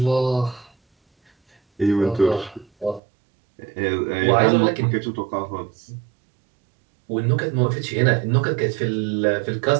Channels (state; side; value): drops out; left; at 3.0 s